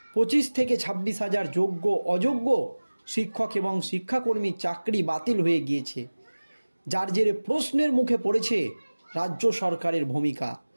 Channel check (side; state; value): both; inverted; correlation -1.00